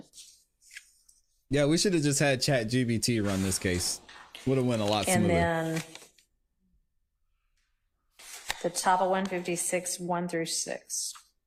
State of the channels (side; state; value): both; identical; correlation 1.00